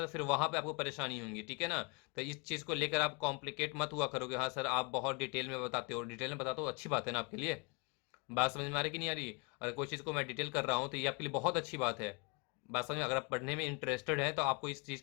फिर वहां पे आपको परेशानी होगी, ठीक है ना। तो इस चीज को लेकर आप कॉम्प्लिकेट मत हुआ करोगे, हाँ सर आप बहुत डिटेल में बताते हो, डिटेल में बताते हो अच्छी बात है ना आपके लिए। बात समझ में आ रही कि नहीं आ रही? अगर कोई चीज़ को मैं डिटेल कर रहा हूँ तो ये आपके लिए बहुत अच्छी बात है। बात समझ में, अगर आप पढ़ने में इंटरेस्टेड हैं तो आपको इस चीज़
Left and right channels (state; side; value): quieter; right; 31.0 dB